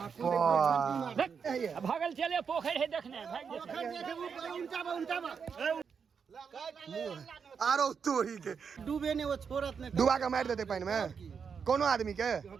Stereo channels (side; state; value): left; quieter; 6.3 dB